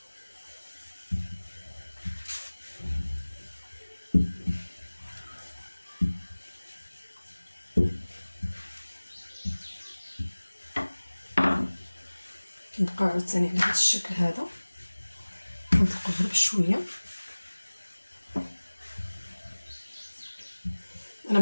كنبقاو عاوتاني على هذا الشكل هذا، كنطلقو غير بشويه. انا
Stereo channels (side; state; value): both; inverted; correlation -1.00